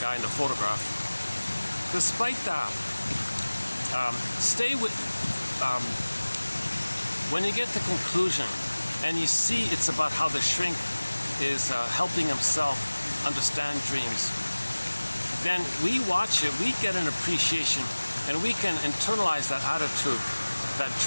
in the photograph. Despite that, stay with, when you get to conclusion and you see it's about how the shrink is helping himself understand dreams, then we watch it, we get an appreciation, and we can internalize that attitude that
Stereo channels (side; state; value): both; inverted; correlation -1.00